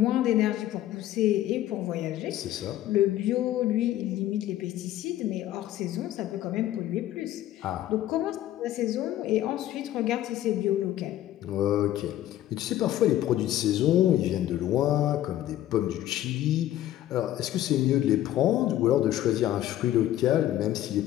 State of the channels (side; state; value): right; quieter; 13.2 dB